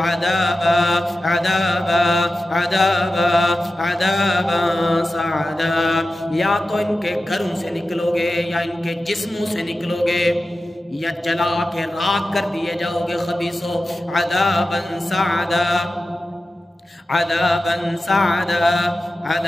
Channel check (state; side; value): normal; both; correlation 0.93